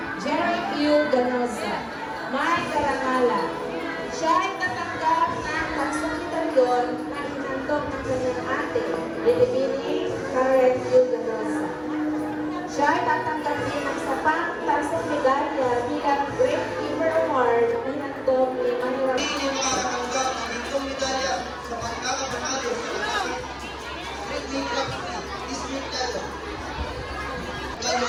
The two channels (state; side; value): identical; both; correlation 1.00